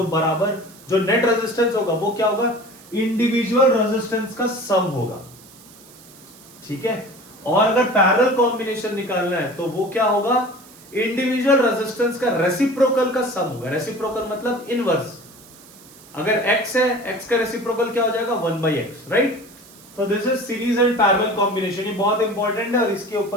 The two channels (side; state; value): right; noise; hiss, 22 dB below the sound